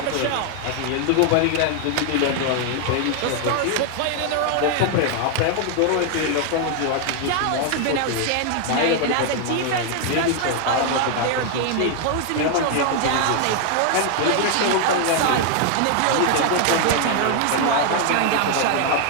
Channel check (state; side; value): different; both; correlation 0.00